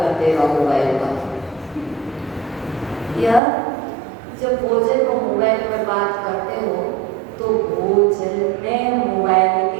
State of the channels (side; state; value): left; drops out; at 3.4 s